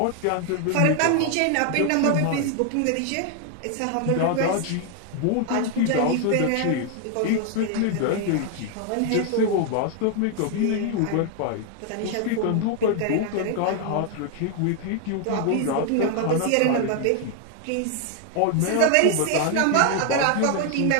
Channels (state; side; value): different; both; correlation 0.00